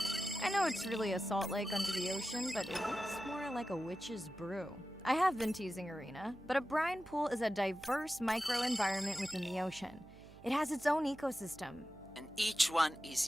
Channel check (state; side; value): noise; right; hum, 21 dB below the sound